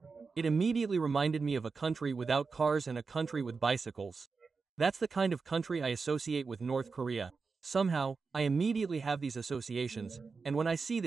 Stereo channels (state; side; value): quieter; left; 4.7 dB